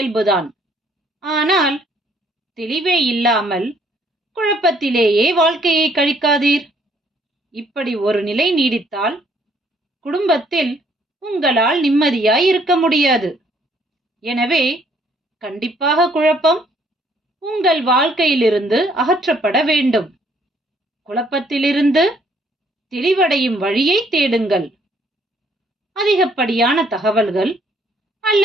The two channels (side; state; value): both; normal; correlation 0.65